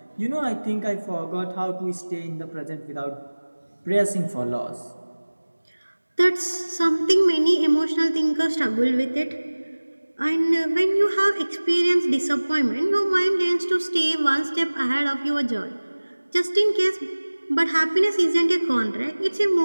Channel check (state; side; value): inverted; both; correlation -1.00